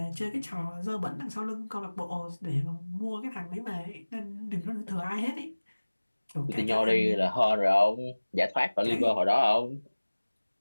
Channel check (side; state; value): both; inverted; correlation -1.00